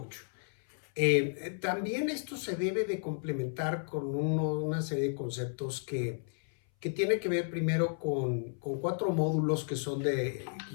También esto se debe de complementar con una serie de conceptos que tiene que ver primero con 4 módulos que son que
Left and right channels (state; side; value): silent; right; 56 dB below the other